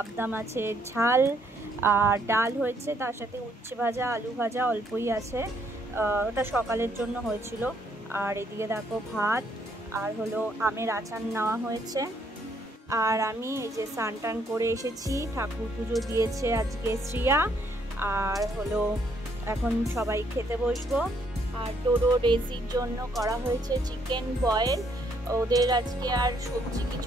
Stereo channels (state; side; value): normal; both; correlation 0.70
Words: মাছের ঝাল আর ডাল হয়েছে, তার সাথে উচ্ছে ভাজা, আলু ভাজা অল্পই আছে, ওটা সকালের জন্য হয়েছিল। আর এদিকে দেখো ভাত আর হলো আমের আচার নেওয়া হয়েছে। আর আমি এই যে স্নান টান করে এসেছি, ঠাকুর পুজো দিয়েছে আজকে শ্রিয়া, আর হলো এখন সবাই খেতে বসবো। আর ডোডো ডেজির জন্য করা হয়েছে চিকেন বয়েল। ওদের আজকে আর সবজি